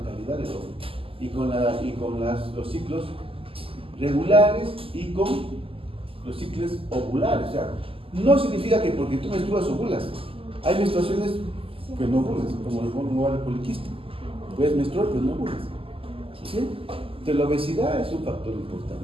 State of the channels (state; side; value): late; left; 0.26 ms